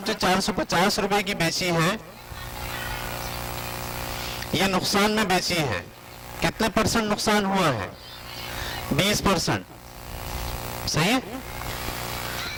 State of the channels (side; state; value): both; identical; correlation 1.00